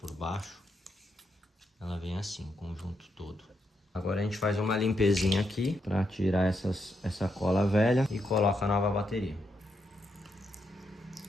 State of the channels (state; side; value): normal; both; correlation 0.80